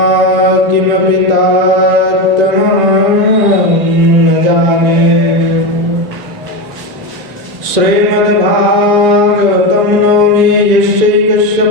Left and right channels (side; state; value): left; late; 1.9 ms